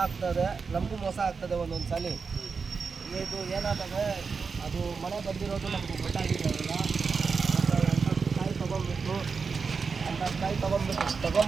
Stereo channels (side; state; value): left; quieter; 5.2 dB